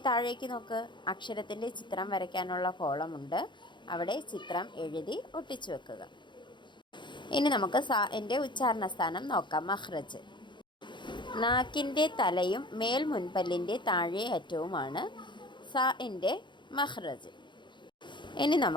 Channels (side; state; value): right; late; 0.23 ms